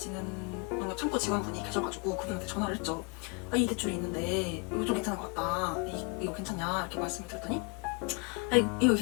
뭔가 창고 직원분이 계셔가지고 그분한테 전화를 했죠. 이 대출이 있는데 이거 좀 괜찮은 것 같다. 이거 괜찮냐? 이렇게 말씀을 드렸더니 이거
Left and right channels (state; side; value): quieter; right; 31.9 dB